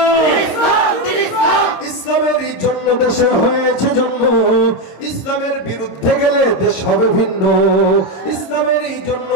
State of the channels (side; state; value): right; late; 26 ms